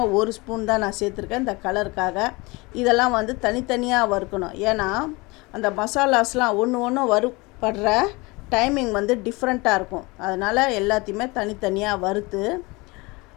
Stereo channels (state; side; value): quieter; right; 24.6 dB